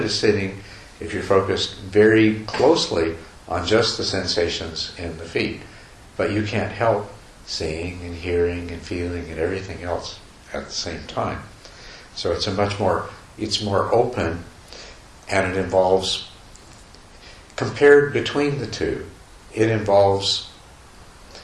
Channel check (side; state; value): both; identical; correlation 1.00